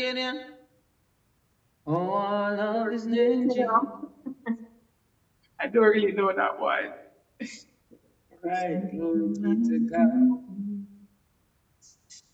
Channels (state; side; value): identical; both; correlation 1.00